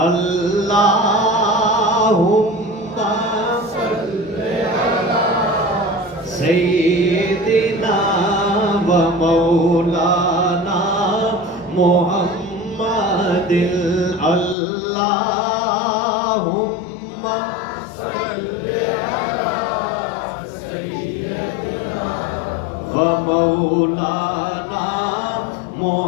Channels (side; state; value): right; drops out; at 14.6 s